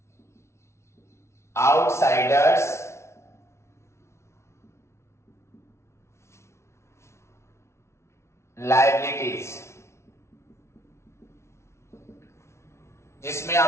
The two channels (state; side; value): late; right; 0.13 ms